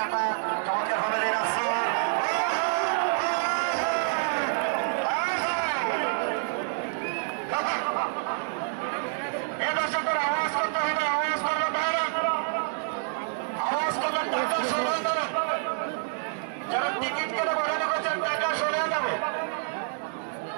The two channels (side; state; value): left; silent; digital silence